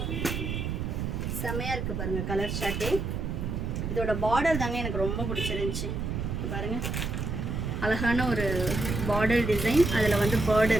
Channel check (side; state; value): right; noise; rumble, 2 dB below the sound